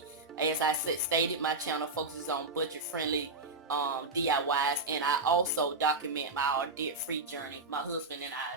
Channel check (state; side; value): quieter; left; 3.4 dB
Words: As I stated, my channel focuses on budget friendly DIYs, and I also document our debt-free journey, my husband and